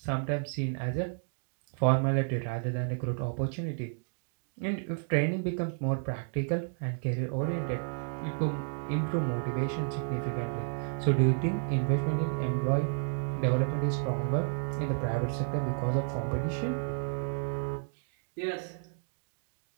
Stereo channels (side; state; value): left; silent; digital silence